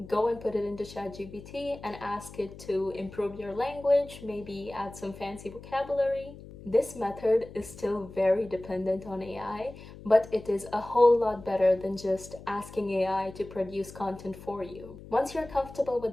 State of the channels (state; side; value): noise; left; hum, 16 dB below the sound